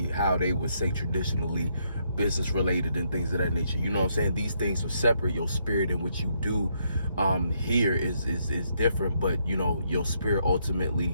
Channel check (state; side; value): inverted; both; correlation -0.75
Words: how they would say traditionally business related and things of that nature, you know what I'm saying? These things are separate. Your spirit and what you do here is different, but your spirit